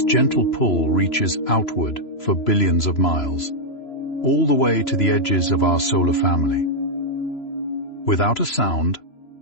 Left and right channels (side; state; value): right; late; 3.0 ms